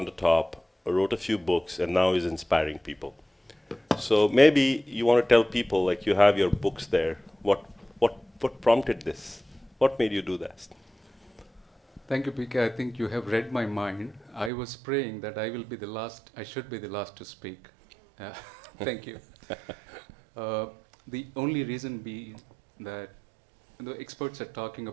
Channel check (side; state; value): left; drops out; at 14.5 s